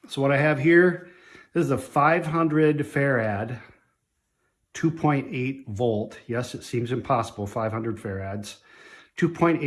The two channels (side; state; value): both; identical; correlation 1.00